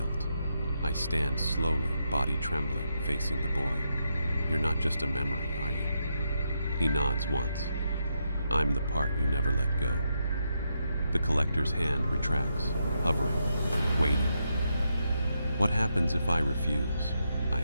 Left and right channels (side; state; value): both; inverted; correlation -0.83